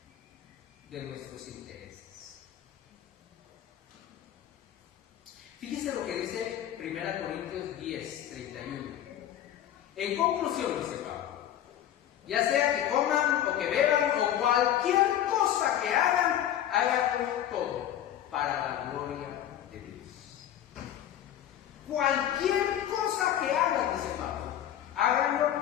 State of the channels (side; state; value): right; quieter; 11.2 dB